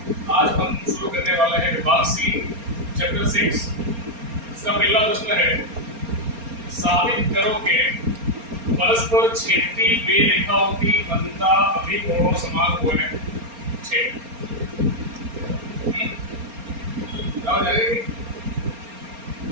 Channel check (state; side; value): late; left; 4.3 ms